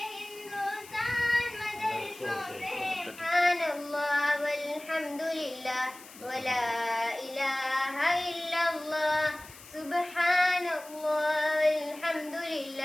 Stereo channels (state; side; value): noise; left; hiss, 19 dB below the sound